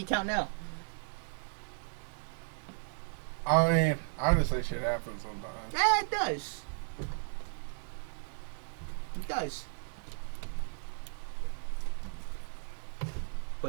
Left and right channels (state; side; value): silent; left; 54 dB below the other